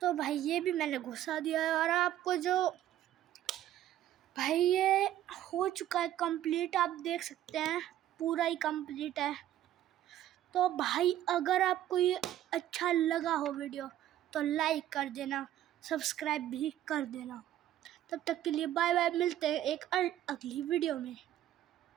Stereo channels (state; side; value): quieter; left; 12.5 dB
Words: तो भाई ये भी मैंने घुसा दिया है और आपको जो भाई ये हो चुका है कंप्लीट, आप देख सकते हैं पूरा ही कंप्लीट है। तो भाई अगर आपको ये अच्छा लगा हो वीडियो तो लाइक कर देना, सब्सक्राइब भी कर देना। तब तक के लिए बाय बाय, मिलते हैं एक अगली वीडियो में।